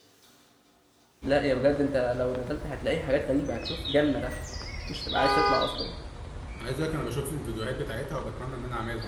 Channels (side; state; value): both; identical; correlation 1.00